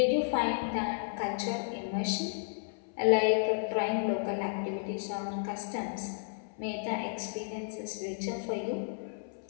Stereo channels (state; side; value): silent; right; 56 dB below the other